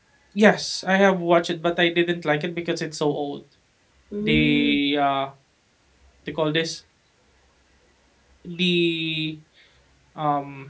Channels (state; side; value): identical; both; correlation 1.00